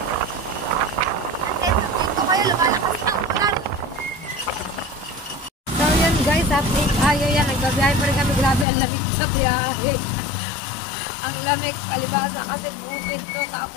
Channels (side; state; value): right; drops out; at 8.7 s